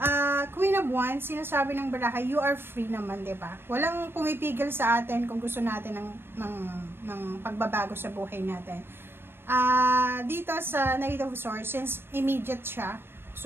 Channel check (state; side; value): late; left; 0.11 ms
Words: Queen of Wands, sinasabi ng baraha, you are free naman, diba? Walang pumipigil sa atin kung gusto natin ng pagbabago sa buhay natin. Dito sa Knight of Swords, since immediate siya,